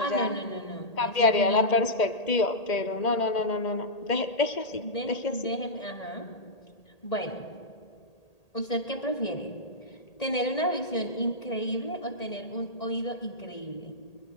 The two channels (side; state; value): right; late; 1.8 ms